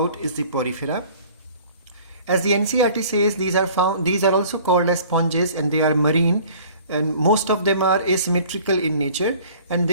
is the Porifera. As the NCERT says, these are also called as sponges, and they are marine, and most of them are asymmetrical in nature, and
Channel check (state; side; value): inverted; both; correlation -0.49